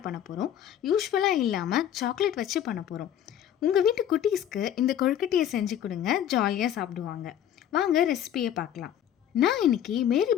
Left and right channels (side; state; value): right; quieter; 10.3 dB